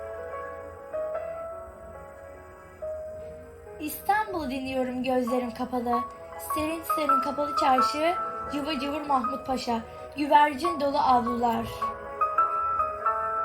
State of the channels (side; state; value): both; identical; correlation 1.00